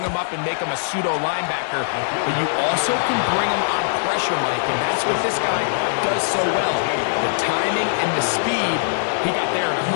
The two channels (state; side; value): silent; right; digital silence